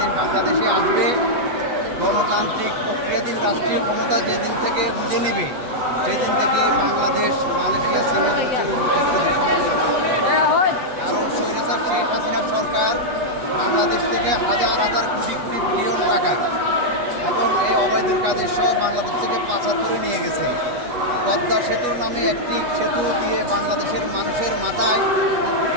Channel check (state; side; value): late; left; 8.2 ms